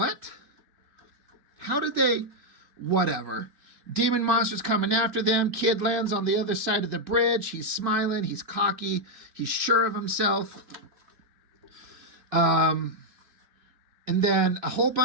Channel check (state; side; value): late; left; 2.9 ms